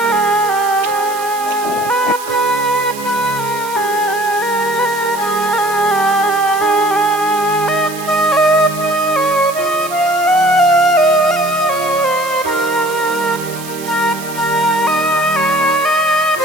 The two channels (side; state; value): right; noise; hiss, 13 dB below the sound